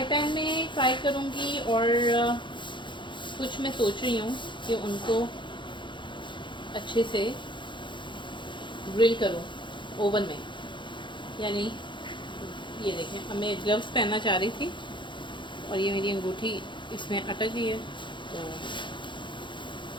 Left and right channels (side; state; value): right; late; 0.23 ms